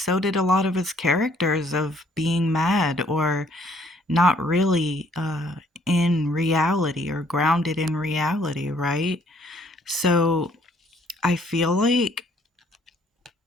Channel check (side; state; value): both; normal; correlation 0.63